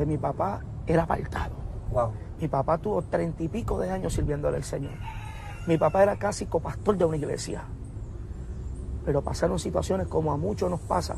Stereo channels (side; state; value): both; identical; correlation 1.00